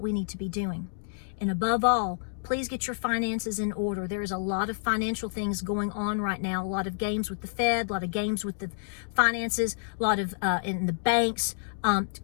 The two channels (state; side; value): silent; right; digital silence